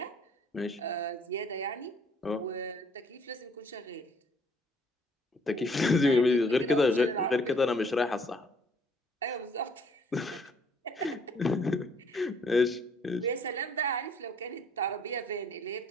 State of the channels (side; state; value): both; normal; correlation 0.62